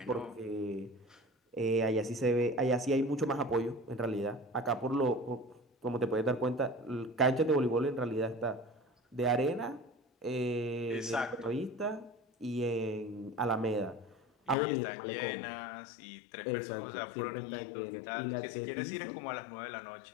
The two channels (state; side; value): drops out; right; at 14.6 s